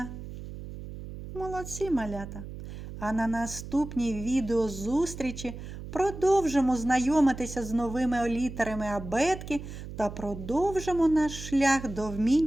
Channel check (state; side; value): noise; right; hum, 11 dB below the sound